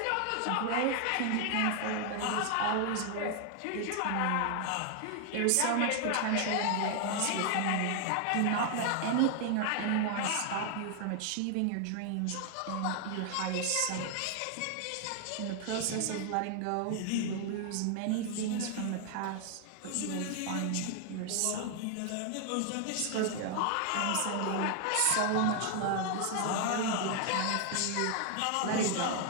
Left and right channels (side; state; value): both; different; correlation 0.00